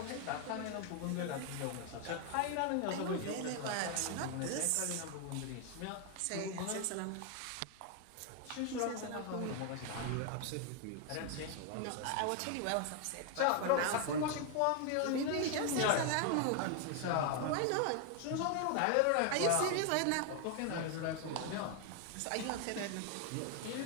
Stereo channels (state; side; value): different; both; correlation 0.01